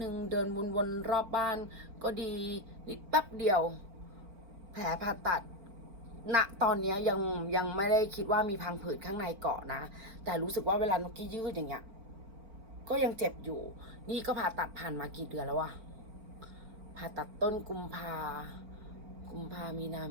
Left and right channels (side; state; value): left; late; 4.5 ms